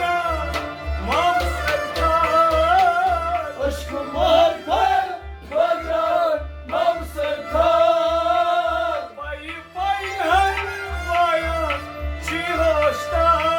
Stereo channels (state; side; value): identical; both; correlation 1.00